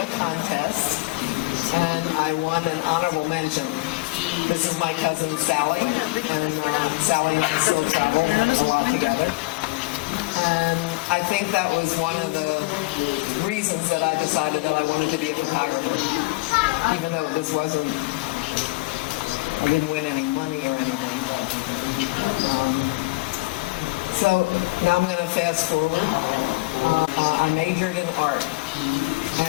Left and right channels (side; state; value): right; quieter; 22.9 dB